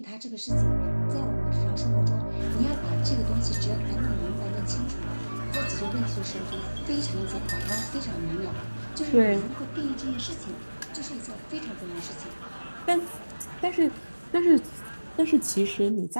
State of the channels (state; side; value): inverted; both; correlation -1.00